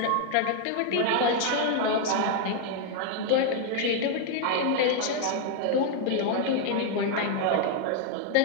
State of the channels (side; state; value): both; different; correlation 0.00